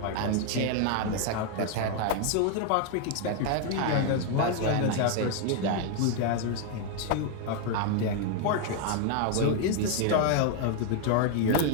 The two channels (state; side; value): different; both; correlation 0.00